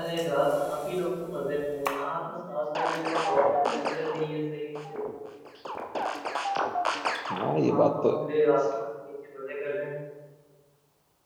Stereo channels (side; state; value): both; identical; correlation 1.00